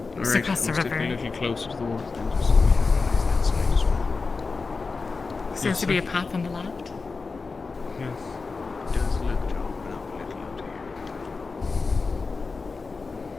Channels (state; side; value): quieter; right; 4.3 dB